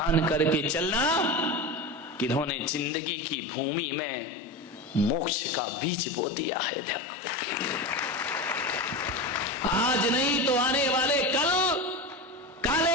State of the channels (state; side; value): normal; both; correlation 0.24